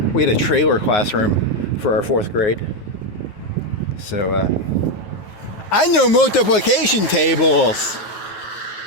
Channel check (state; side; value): late; right; 9.7 ms